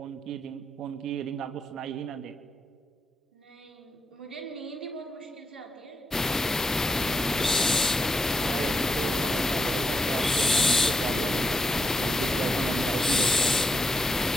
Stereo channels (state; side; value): normal; both; correlation 0.82